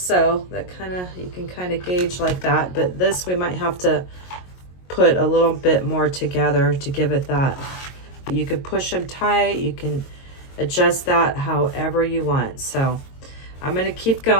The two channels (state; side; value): late; right; 22 ms